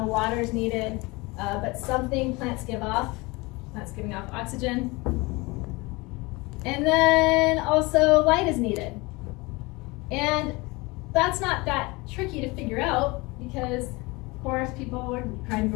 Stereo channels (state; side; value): quieter; right; 24.4 dB